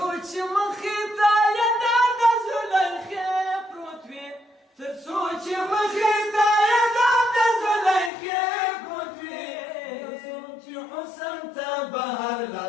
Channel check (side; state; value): right; drops out; at 8.1 s